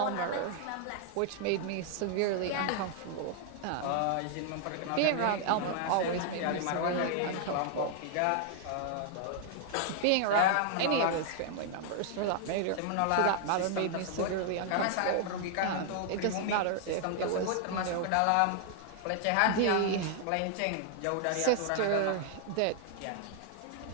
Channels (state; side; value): different; both; correlation 0.00